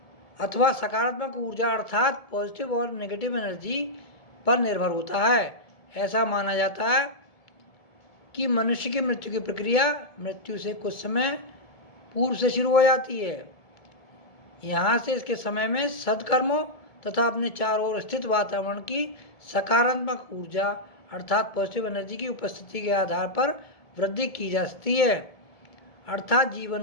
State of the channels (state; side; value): late; right; 1.7 ms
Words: अथवा सकारात्मक ऊर्जा अर्थात पॉजिटिव और नेगेटिव एनर्जी पर निर्भर होता है। ऐसा माना जाता है कि मनुष्य की मृत्यु की प्रक्रिया मृत्यु से कुछ समय पूर्व से शुरू हो जाती है। यहाँ से इसके समय में सद्कर्मों तथा अपने चारों ओर स्थित वातावरण की सकारात्मक ऊर्जा अर्थात पॉजिटिव एनर्जी की उपस्थिति के आधार पर वृद्धि की जा सकती है, अर्थात